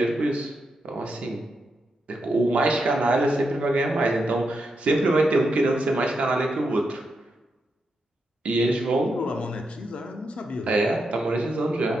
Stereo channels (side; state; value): both; normal; correlation 0.85